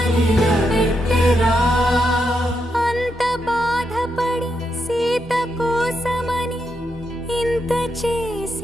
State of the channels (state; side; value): normal; both; correlation 0.82